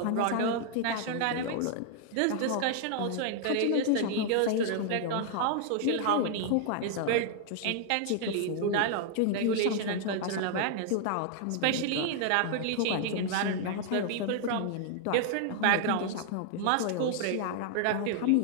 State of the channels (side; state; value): both; different; correlation 0.00